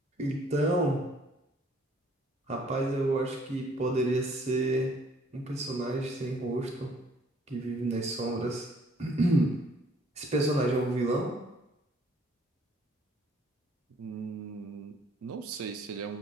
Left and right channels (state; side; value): normal; both; correlation 0.61